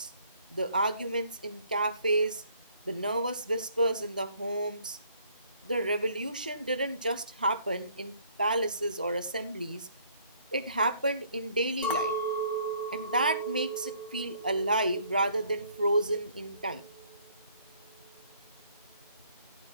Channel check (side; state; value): both; inverted; correlation -0.62